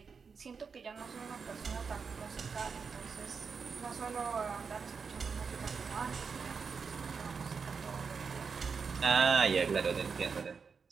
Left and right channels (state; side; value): quieter; left; 5.5 dB